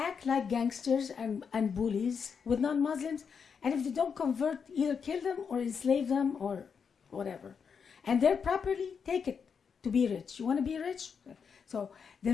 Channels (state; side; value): quieter; right; 6.3 dB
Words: like gangsters and bullies with non-Muslims, and if they don't convert, either kill them or enslave them or whatever. And their property, take it to be rich. You want to be rich? So the